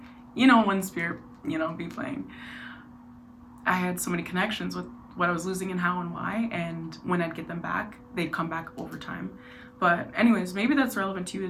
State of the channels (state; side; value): identical; both; correlation 1.00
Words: you know, when spirit, you know, be playing, I had so many connections with what I was losing and how and why, and when I'd get them back, they'd come back over time. But anyways, maybe that's relevant to you,